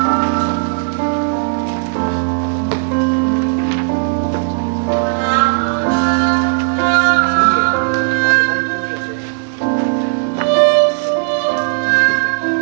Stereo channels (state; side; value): silent; left; 69 dB below the other